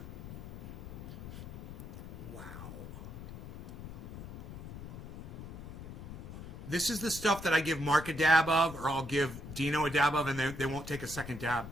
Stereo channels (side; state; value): left; noise; rumble, 10 dB below the sound